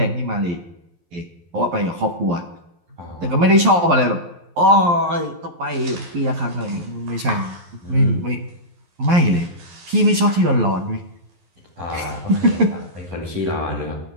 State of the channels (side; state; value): left; late; 11 ms